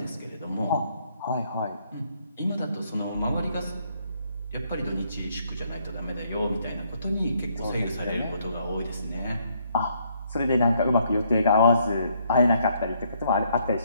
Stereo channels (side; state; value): both; inverted; correlation -0.70